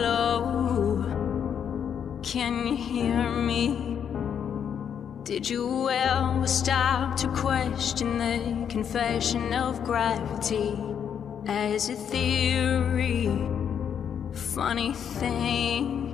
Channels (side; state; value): right; quieter; 8.2 dB